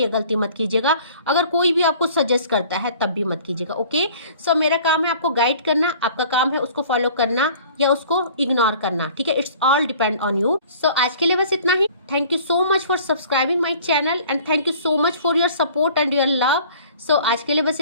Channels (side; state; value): both; inverted; correlation -0.49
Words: ये गलती मत कीजिएगा। अगर कोई भी आपको सजेस्ट करता है तब भी मत कीजिएगा। ओके, सो मेरा काम है आपको गाइड करना, आपका काम है उसको फॉलो करना या उसको इग्नोर करना। ठीक है, it's all depend on you. So आज के लिए बस इतना ही। Thank you so much for subscribing my channel and thank you so much for your support and your love. So आज के लिए बस